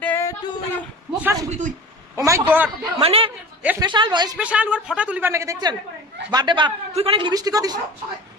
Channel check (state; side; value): normal; both; correlation 0.37